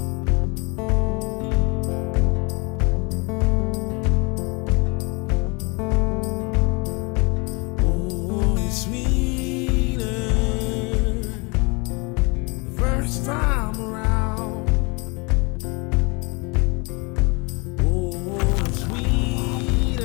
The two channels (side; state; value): right; quieter; 29.4 dB